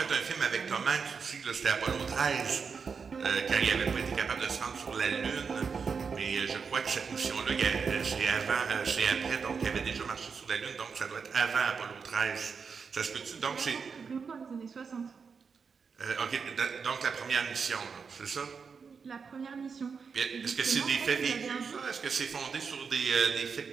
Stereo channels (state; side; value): quieter; left; 5.7 dB